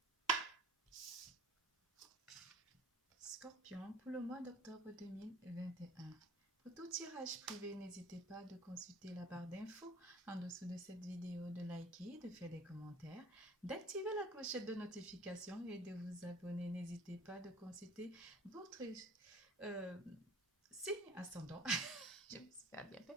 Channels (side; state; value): both; normal; correlation 0.48